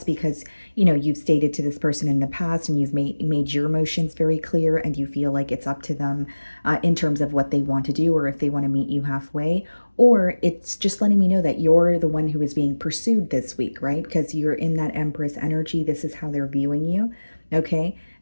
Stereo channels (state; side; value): inverted; both; correlation -1.00